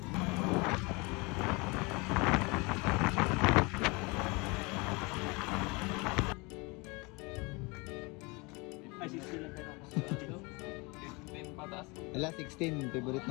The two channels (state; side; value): quieter; right; 27.3 dB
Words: Ay, 16 lang tayo. 10 patas. Wala, 16. Favorite